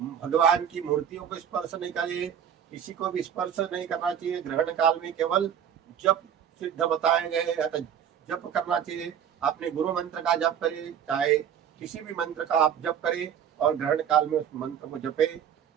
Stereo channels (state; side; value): quieter; left; 8.8 dB